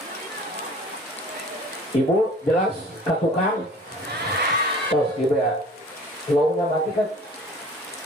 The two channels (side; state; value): both; normal; correlation 0.46